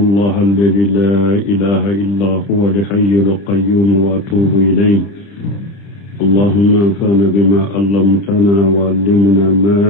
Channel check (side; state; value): right; late; 30 ms